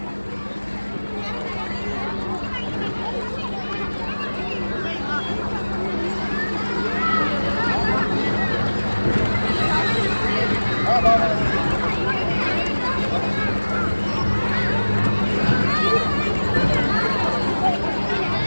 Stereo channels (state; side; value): inverted; both; correlation -1.00